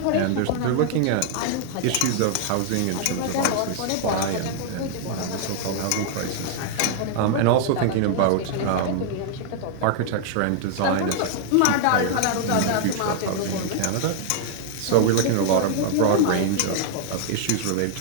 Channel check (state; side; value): different; both; correlation 0.00